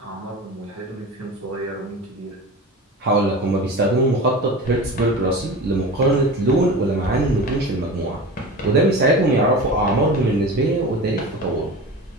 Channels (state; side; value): normal; both; correlation 0.31